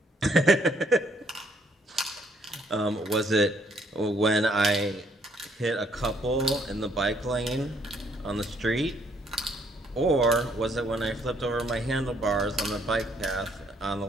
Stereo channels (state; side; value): normal; both; correlation 0.67